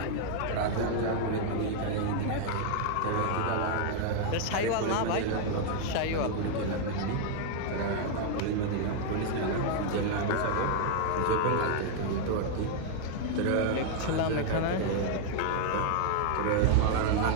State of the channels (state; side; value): different; both; correlation 0.00